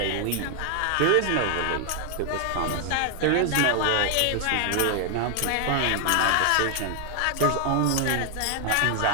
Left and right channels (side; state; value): both; different; correlation 0.00